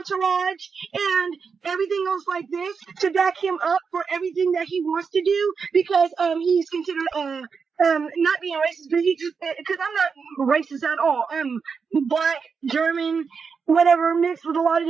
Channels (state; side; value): quieter; left; 5.6 dB